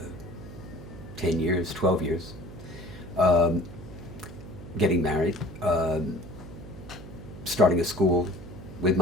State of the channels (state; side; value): noise; right; hum, 14 dB below the sound